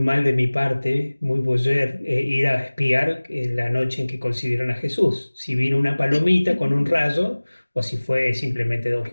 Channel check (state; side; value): inverted; both; correlation -1.00